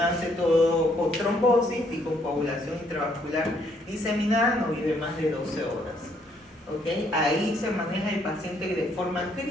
todo con trombosis y con coagulación intravascular diseminada, no vive más de 12 horas. ¿Okay? Ahí se maneja el paciente de forma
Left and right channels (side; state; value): both; normal; correlation 0.69